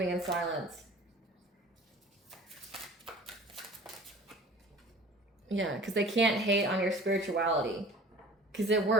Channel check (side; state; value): both; normal; correlation 0.44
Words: in silence. Yeah, because they can't hate on your spirituality. Because it